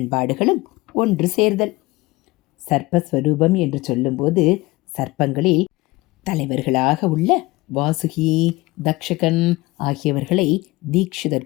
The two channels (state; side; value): quieter; right; 20.8 dB